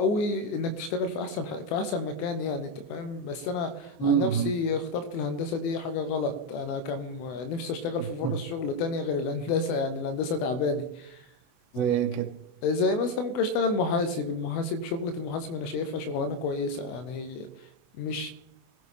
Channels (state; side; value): late; right; 24 ms